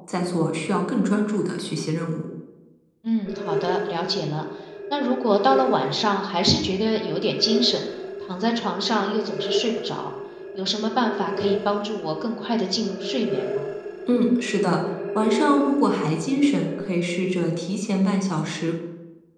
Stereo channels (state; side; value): identical; both; correlation 1.00